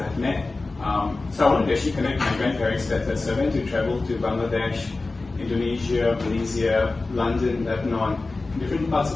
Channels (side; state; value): right; quieter; 3.4 dB